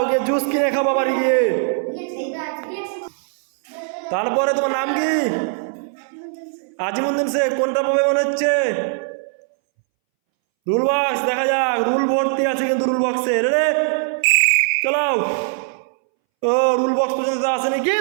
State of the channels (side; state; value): left; silent; 64 dB below the other